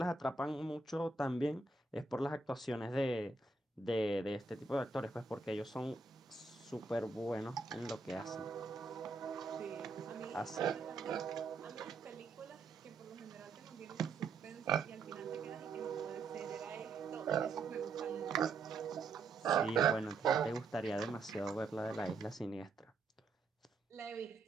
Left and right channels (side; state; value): left; quieter; 3.9 dB